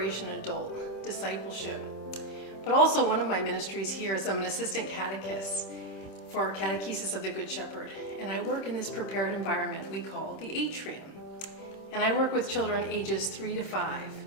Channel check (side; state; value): right; late; 26 ms